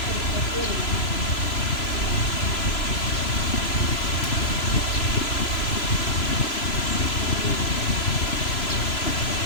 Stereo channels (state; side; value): late; right; 3.0 ms